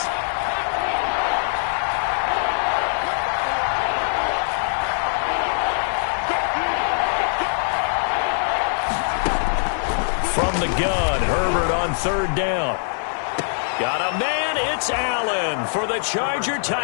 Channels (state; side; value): silent; right; digital silence